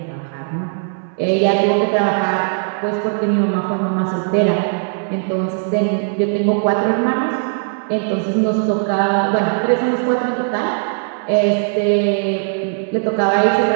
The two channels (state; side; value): silent; left; digital silence